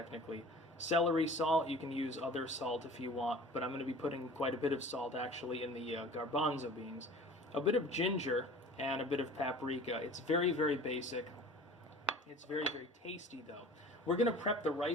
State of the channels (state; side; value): normal; both; correlation 0.43